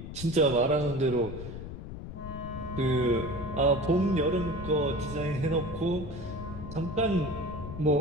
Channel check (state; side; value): noise; left; rumble, 10 dB below the sound